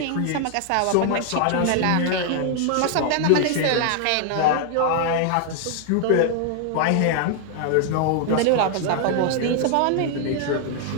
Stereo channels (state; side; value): different; both; correlation 0.00